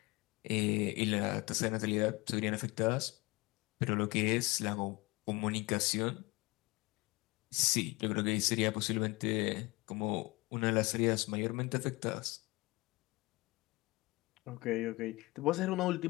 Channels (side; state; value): right; quieter; 23.3 dB